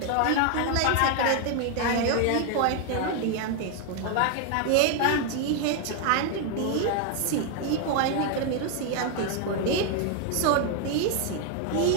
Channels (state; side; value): different; both; correlation 0.00